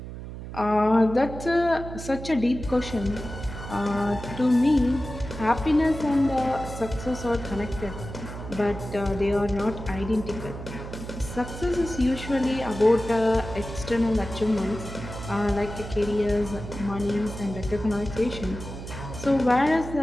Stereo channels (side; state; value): right; noise; hum, 10 dB below the sound